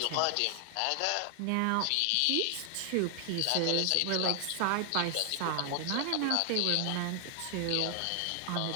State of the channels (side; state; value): both; different; correlation 0.00